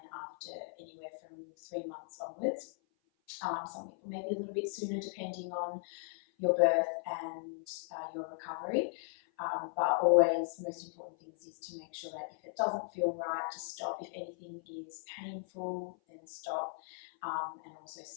after anywhere from 3 months onwards. Some people maybe a little bit sooner depending on your birth and your recovery. But always, most important things is to make sure that if it doesn't feel right, to stop. If anything is painful, then stop, and also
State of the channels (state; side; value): silent; right; 53 dB below the other